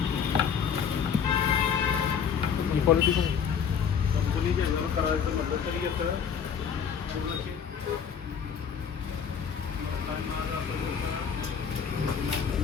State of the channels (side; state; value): right; quieter; 7.2 dB